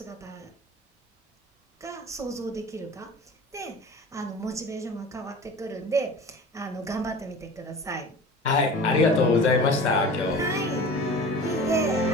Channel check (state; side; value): normal; both; correlation 0.38